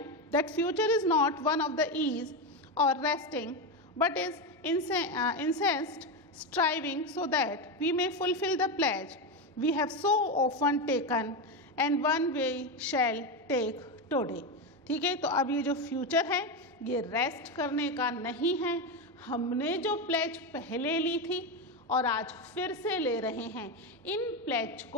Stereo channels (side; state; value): both; normal; correlation 0.13